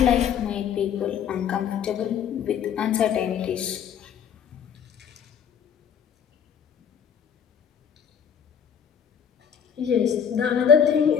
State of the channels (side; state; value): right; quieter; 8.0 dB